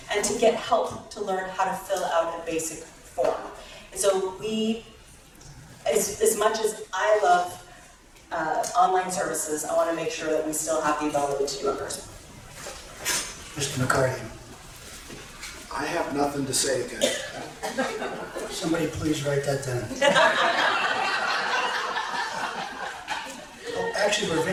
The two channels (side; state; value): both; identical; correlation 1.00